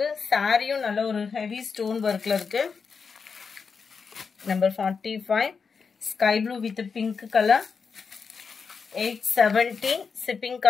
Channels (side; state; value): right; quieter; 5.5 dB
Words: சாரியும் நல்ல ஒரு ஹெவி ஸ்டோன் ஒர்க்ல இருக்கு. Number 45 sky blue with pink colour 870. Shipping